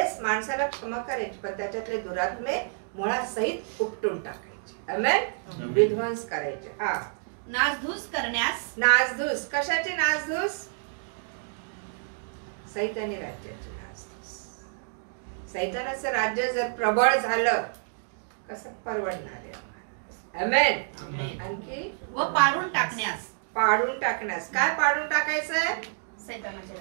माणसाला क्षमा करायची, पण त्याच्यातले दुरात्मे मुळात सहित उपटून टाकायचे. आमेन. विध्वंस करायचे. हा, नासधूस करण्यास. नासधूस. कशाची नासधूस? सैतानी राज्याची नासधूस. सैतानाचं राज्य जर प्रबळ झालं कसं परवडणार आहे? आमेन. आणखी व पाडून टाकण्यास. पाडून टाकण्यास. काय पाडून टाकायचंय? सैतानाचे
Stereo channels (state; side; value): silent; left; digital silence